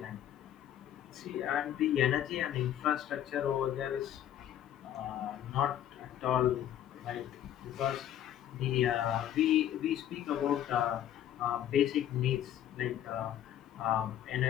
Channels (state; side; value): quieter; right; 11.1 dB